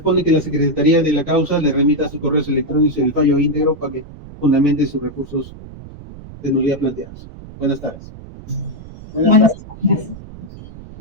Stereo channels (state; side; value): noise; right; rumble, 16 dB below the sound